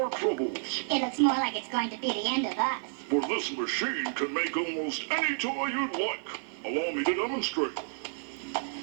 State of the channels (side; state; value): left; silent; 58 dB below the other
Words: troubles. It looks more like it's going to be the end of us. For this machine can make almost any toy you'd like. Allow me to demonstrate.